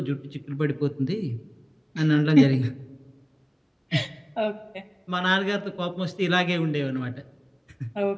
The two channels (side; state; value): both; identical; correlation 1.00